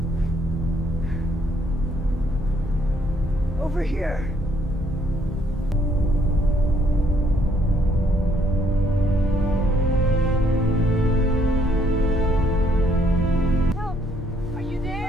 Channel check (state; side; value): normal; both; correlation 0.68